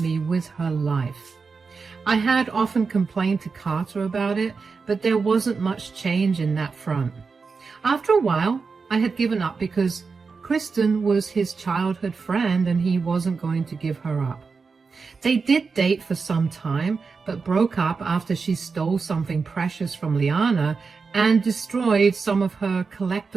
with her life. I had often complained to Carter about it, but there wasn't much change in that front. After a while, I had given up because Kristen was his childhood friend and he wasn't going to give her up. They did date for some time, but broke up after she stole something precious from Liana and destroyed some of her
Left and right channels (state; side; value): quieter; left; 4.8 dB